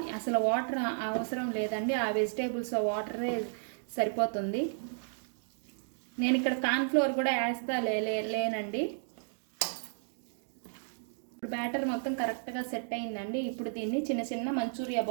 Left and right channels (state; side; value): silent; left; digital silence